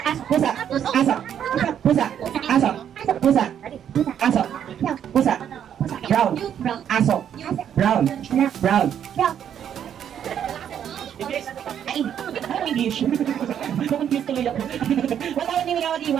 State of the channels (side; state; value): left; quieter; 9.3 dB